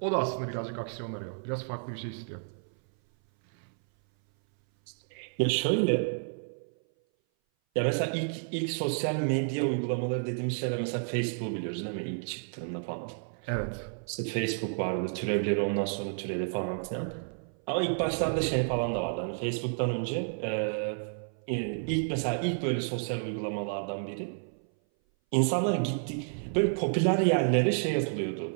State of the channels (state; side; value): silent; left; 57 dB below the other